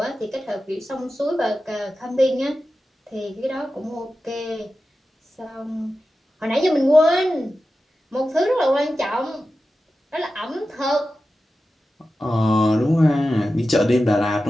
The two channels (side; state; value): both; normal; correlation 0.93